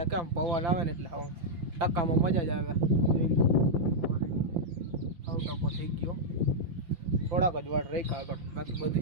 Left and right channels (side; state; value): left; late; 5.8 ms